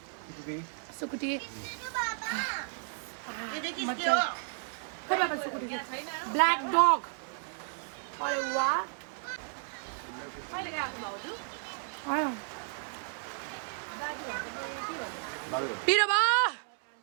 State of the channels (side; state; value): left; silent; 56 dB below the other